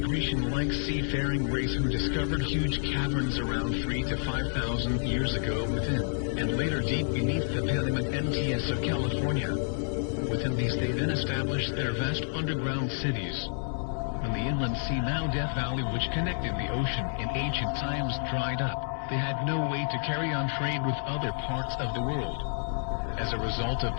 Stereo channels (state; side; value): silent; right; 58 dB below the other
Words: Grecian-like seafaring race who discovered huge caverns around 3,000 to 5,000 years ago within, and later deep beneath the Paleolithic MTS of California. Within these they then established their vast underground cities. When the inland sea, now Death Valley, which connected the ocean in ancient times, dried up, they had no way to carry on trade with other parts of the world. As a result of